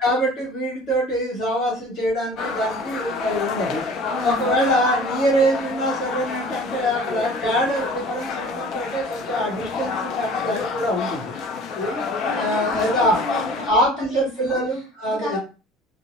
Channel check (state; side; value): normal; both; correlation 0.45